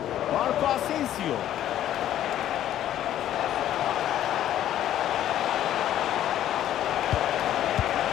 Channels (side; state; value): right; quieter; 11.8 dB